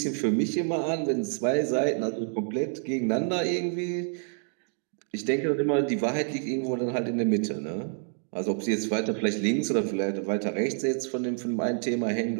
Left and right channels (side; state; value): left; silent; 59 dB below the other